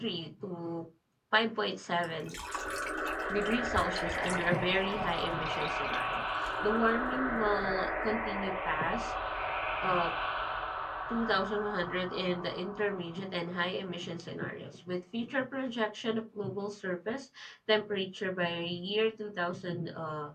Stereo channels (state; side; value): identical; both; correlation 1.00